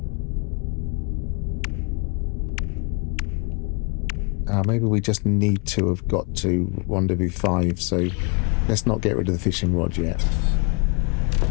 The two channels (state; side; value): quieter; right; 33.0 dB